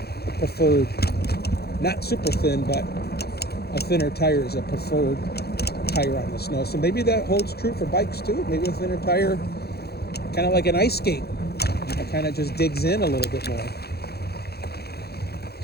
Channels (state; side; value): late; right; 0.46 ms